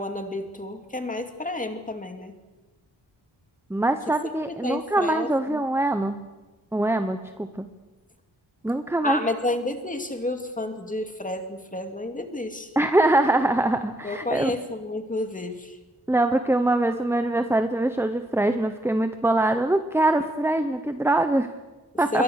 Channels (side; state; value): both; normal; correlation 0.74